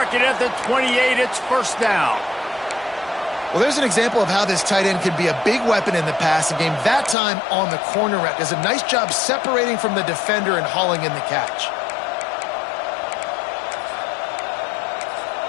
it at the 28. It's first down. Well, there's an example of how this tight end can be a big weapon in the passing game. That time on the corner route. Does a nice job separating from the defender and hauling in the catch.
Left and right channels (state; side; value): drops out; right; at 7.2 s